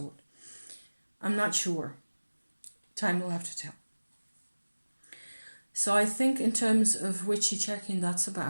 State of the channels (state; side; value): inverted; both; correlation -1.00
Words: I'm not sure. Time will have to tell. So I think in terms of witchy checking, that's